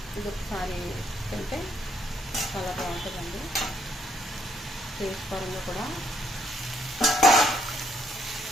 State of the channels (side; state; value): both; normal; correlation 0.72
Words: ఇది ఒకసారి తింటే చాలా బాగుంటుందండి. టేస్ట్ పరంగా కూడా